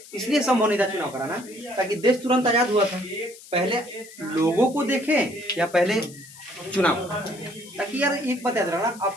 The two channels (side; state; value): left; noise; hiss, 19 dB below the sound